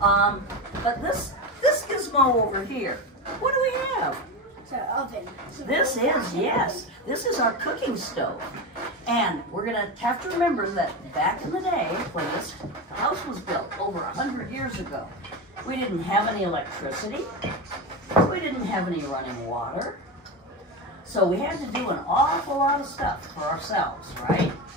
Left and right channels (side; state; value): both; normal; correlation 0.19